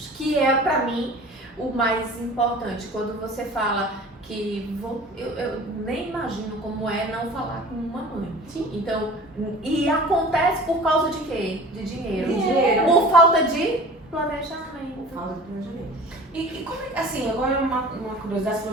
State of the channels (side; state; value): both; normal; correlation 0.42